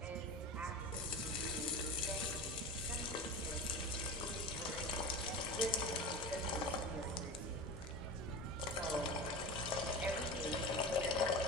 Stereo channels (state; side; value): normal; both; correlation 0.31